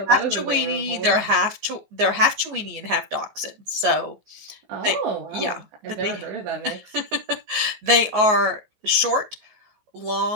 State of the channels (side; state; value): left; late; 14 ms